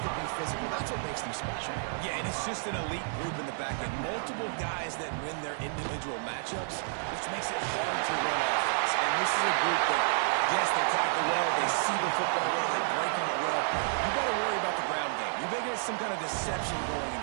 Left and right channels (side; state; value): left; silent; 57 dB below the other